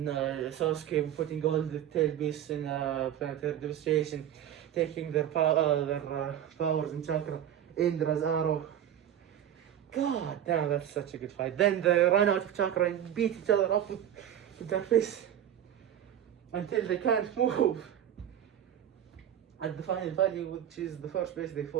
Sasuke putting all the tail beasts in planetary devastation, taking their powers and chakra, Indra's arrow. God damn, that's such a good fight. Then they run out of chakra and beat each other up with their fists until they can't move. At the final value, which is the first place they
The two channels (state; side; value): quieter; left; 10.5 dB